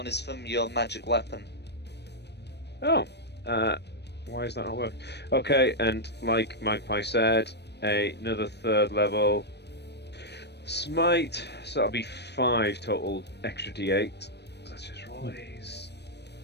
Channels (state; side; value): late; right; 0.49 ms